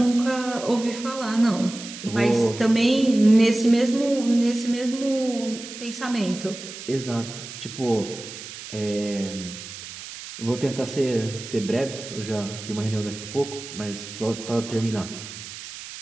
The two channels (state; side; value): noise; right; hiss, 12 dB below the sound